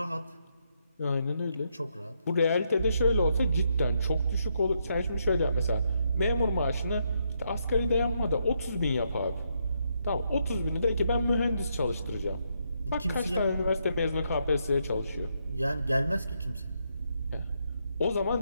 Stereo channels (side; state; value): both; inverted; correlation -0.78